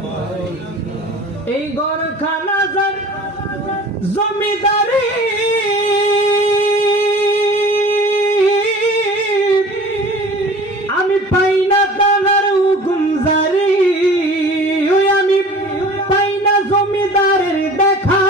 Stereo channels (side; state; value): both; normal; correlation 0.43